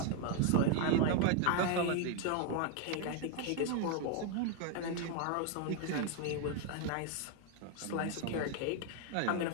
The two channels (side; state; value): both; different; correlation 0.01